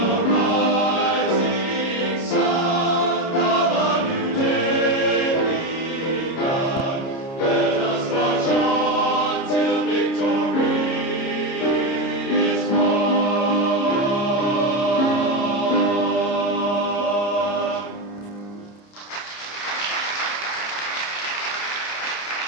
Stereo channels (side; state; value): right; late; 30 ms